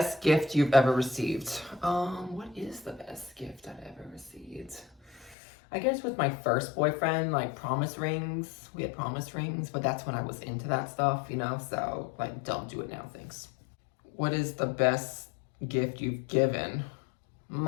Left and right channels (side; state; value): right; drops out; at 5.4 s